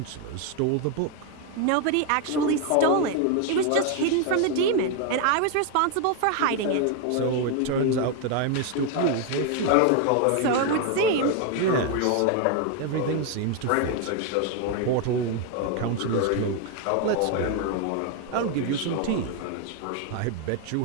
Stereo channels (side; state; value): both; different; correlation 0.01